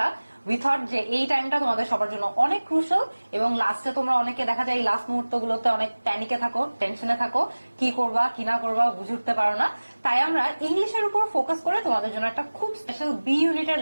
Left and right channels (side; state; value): both; inverted; correlation -1.00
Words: উই থট যে এই টাইমটা তোমাদের সবার জন্য অনেক ক্রুশাল এবং লাস্টে তোমরা অনেকে দেখা যায় এই লাস্ট মুহূর্তগুলোতে অনেক প্যানিকে থাকো, টেনশনে থাকো, কি করবা কি না করবা বুঝে উঠতে পারো না। তাই আমরা ইংলিশের উপর ফোকাস করে তোমাদের জন্য একটা খুব স্পেশাল বি ইউনিটের